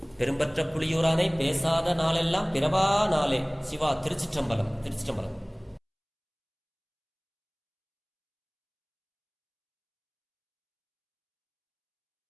பெரும்பற்ற புலியூரானை பேசாத நாளெல்லாம் பிறவா நாளே. சிவா. திருச்சிற்றம்பலம். திருச்சிற்றம்பலம்.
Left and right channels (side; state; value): both; identical; correlation 1.00